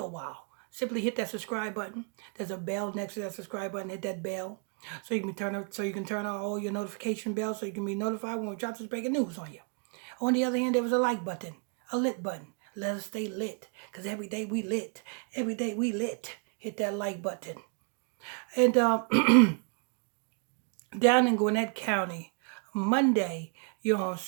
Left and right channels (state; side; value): quieter; left; 39.1 dB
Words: while. Simply hit that subscribe button. There's a bell next to that subscribe button. Hit that bell so you can turn on all your notification bells so you can be notified when we drop this breaking news on you. On the other hand, there was a like button, a lit button. Let us stay lit, because every day we lit. Every day we lit. Hit that like button. And down in Gwinnett County, Monday, you know what I'm